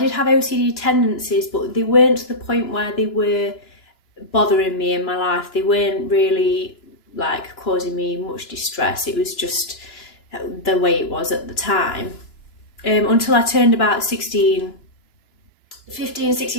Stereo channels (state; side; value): late; right; 2.9 ms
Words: have OCD tendencies, but they weren't to the point where they were bothering me in my life. They weren't really causing me much distress. It was just the way it was at the time. Until I turned about 15,